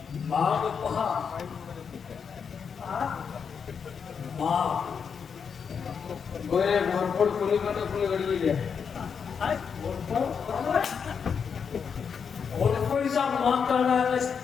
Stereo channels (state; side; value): quieter; right; 6.5 dB